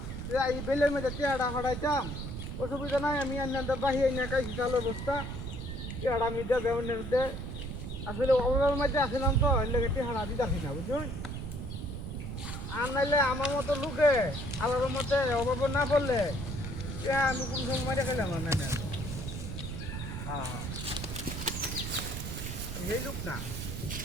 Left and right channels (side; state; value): right; noise; rumble, 6 dB below the sound